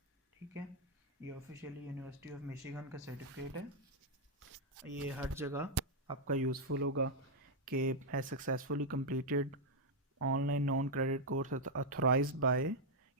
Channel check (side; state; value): both; normal; correlation -0.01